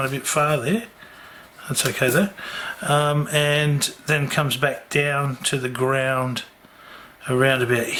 a bit far there. That's okay though. And then comes back down to the ground around about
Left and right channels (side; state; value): both; identical; correlation 1.00